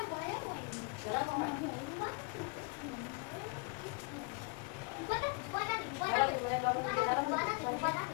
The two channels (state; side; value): quieter; right; 30.9 dB